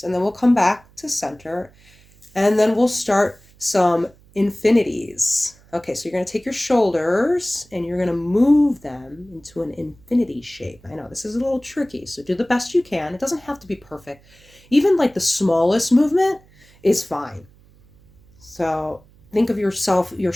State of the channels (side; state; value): right; noise; hum, 28 dB below the sound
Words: And then we'll come back to center. And then we'll start some infinities. Okay, so you're going to take your shoulders and you're going to move them into an infinity shape. I know this is a little tricky, so do the best you can. It doesn't have to be perfect. Even like the smallest movement is fine. So think of your